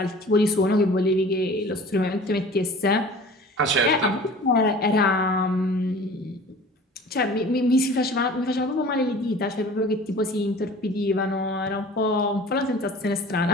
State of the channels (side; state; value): both; normal; correlation 0.44